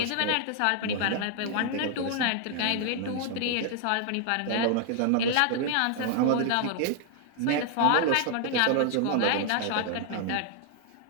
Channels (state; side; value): different; both; correlation 0.00